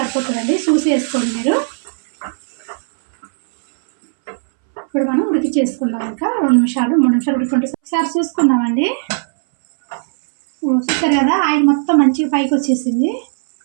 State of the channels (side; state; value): left; silent; 65 dB below the other